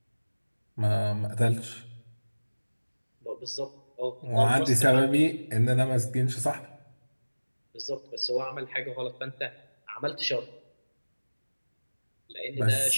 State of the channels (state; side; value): inverted; both; correlation -1.00